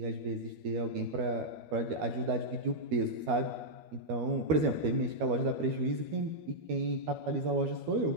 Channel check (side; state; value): left; late; 13 ms